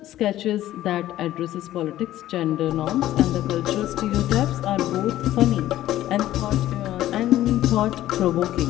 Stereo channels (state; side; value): quieter; right; 13.9 dB